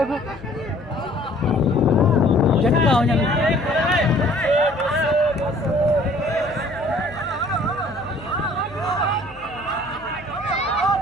झटका हो जाने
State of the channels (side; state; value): left; noise; hum, 21 dB below the sound